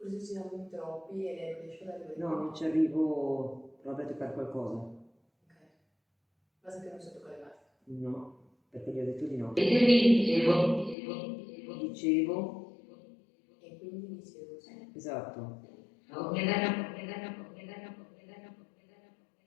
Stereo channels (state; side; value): drops out; right; at 11.0 s